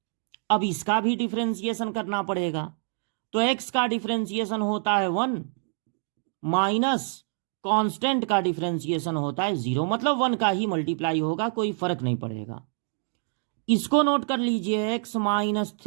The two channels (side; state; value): left; silent; digital silence